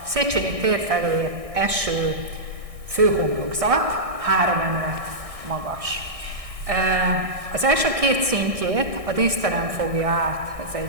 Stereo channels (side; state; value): left; late; 1.6 ms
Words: Széchenyi tér felé eső főhomlokzat 3 emelet magas. Az első 2 szintjét a díszterem fogja át, ez